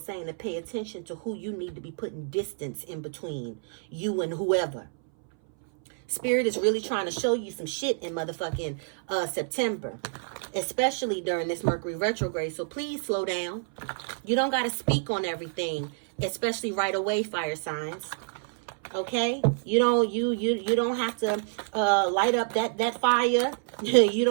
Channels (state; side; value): silent; left; 59 dB below the other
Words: to pay attention to who you need to be putting distance in between you and whoever. Spirit is really trying to show you some shit in motherfucking September, especially during this Mercury retrograde. So please slow down. You don't got to speak on everything, especially right away, fire signs. Okay, you don't have to light up that fire. You